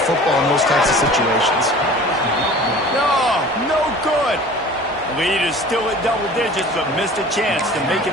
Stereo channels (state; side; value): normal; both; correlation 0.43